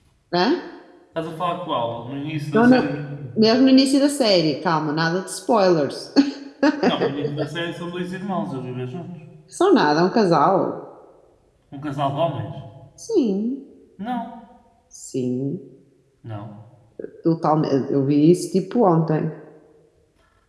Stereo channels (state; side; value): identical; both; correlation 1.00